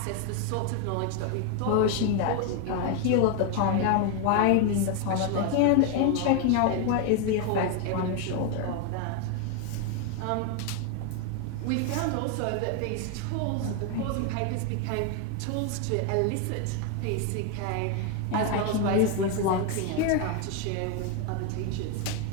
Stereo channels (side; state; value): both; different; correlation 0.01